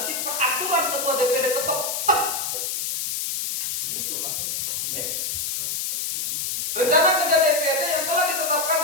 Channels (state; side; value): noise; left; hiss, 2 dB below the sound